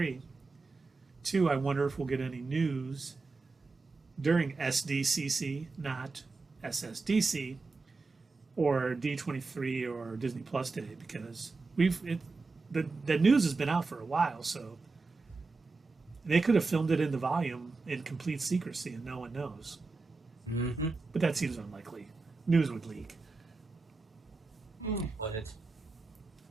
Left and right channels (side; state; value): left; quieter; 3.9 dB